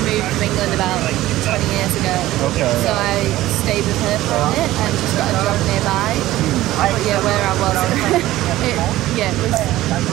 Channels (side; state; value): left; quieter; 15.8 dB